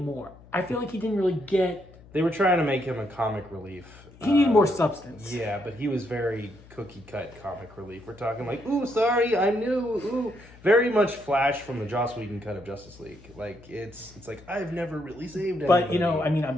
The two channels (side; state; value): left; noise; hum, 22 dB below the sound